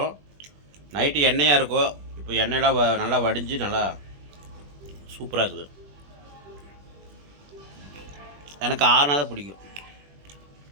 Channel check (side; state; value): left; late; 21 ms